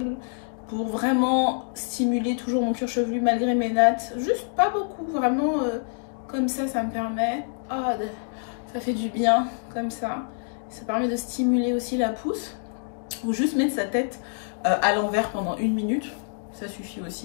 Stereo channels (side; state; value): right; silent; 61 dB below the other